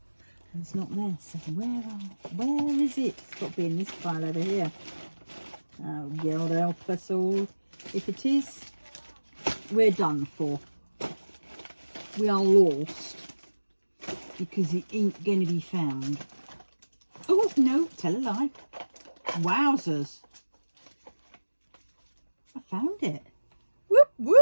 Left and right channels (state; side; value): inverted; both; correlation -1.00